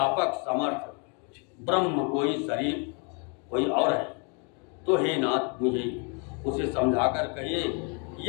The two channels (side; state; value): right; quieter; 35.9 dB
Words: समर्थ ब्रह्म कोई शरीर कोई और है, तो हे नाथ मुझे उसे समझाकर कहिए।